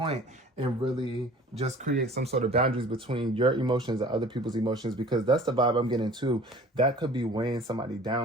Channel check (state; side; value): normal; both; correlation 0.47